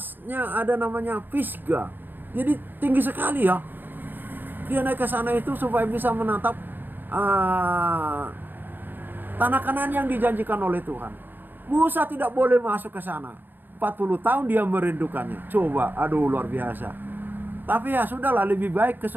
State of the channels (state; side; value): late; left; 0.093 ms